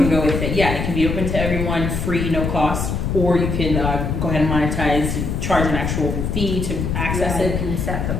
can go with it. Yeah, it can be open to everyone, free, no cost, or you can go ahead and monetize, charge an actual fee to access Yeah, you it. can set the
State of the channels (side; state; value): left; noise; rumble, 2 dB below the sound